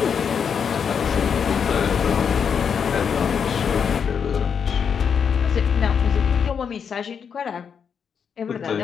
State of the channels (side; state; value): right; quieter; 6.9 dB